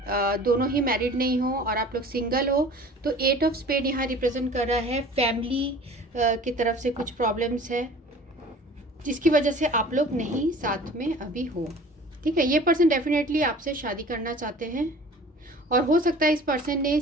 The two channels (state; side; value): normal; both; correlation 0.45